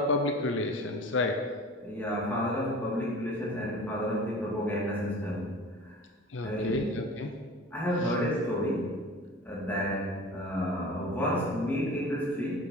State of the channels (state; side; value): normal; both; correlation 0.39